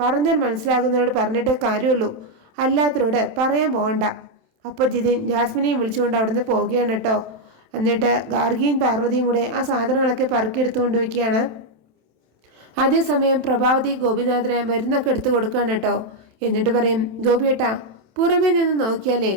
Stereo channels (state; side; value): late; left; 27 ms